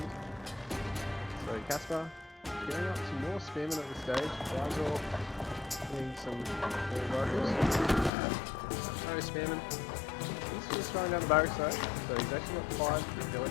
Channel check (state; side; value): drops out; right; at 8.1 s